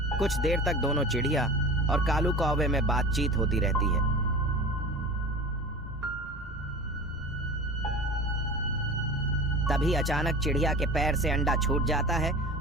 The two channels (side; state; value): right; noise; rumble, 20 dB below the sound